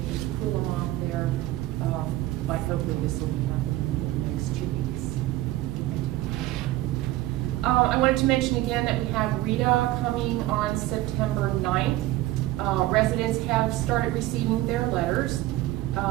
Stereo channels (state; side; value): quieter; left; 16.4 dB